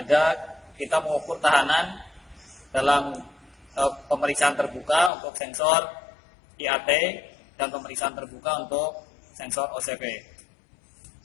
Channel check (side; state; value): right; drops out; at 5.1 s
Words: kita mengukur tahanan dalam pemeriksaan terbuka untuk sensor IAT dan pemeriksaan terbuka untuk sensor OCV.